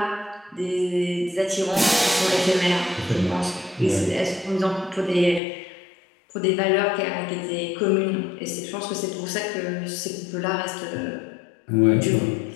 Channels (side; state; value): right; drops out; at 5.4 s